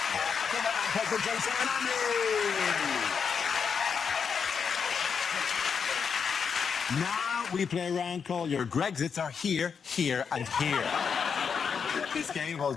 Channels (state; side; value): quieter; right; 6.4 dB